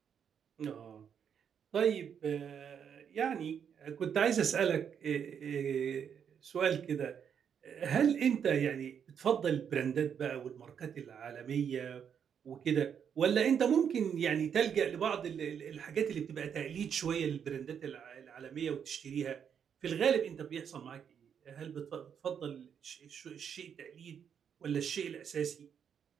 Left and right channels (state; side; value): quieter; left; 7.8 dB